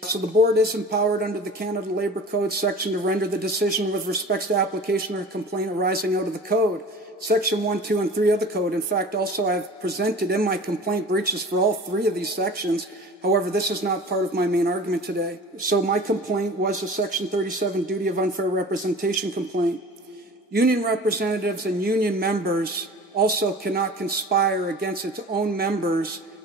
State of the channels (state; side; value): normal; both; correlation 0.40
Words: So the board is empowered under the Canada Labour Code section to render the decision with respect to application or complaint arising out of the code. Section 1, 2, and 3 of the code. In fact, also I have presented in my complaint breaches for all 3 of these sections. However, this is not part of my main argument today. So my complaint was a Section 37 duty of unfair representation complaint. Union representatives and union members also cannot conspire against its own members